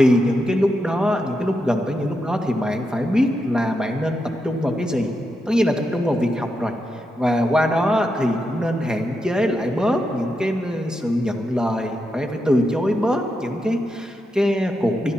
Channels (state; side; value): normal; both; correlation 0.85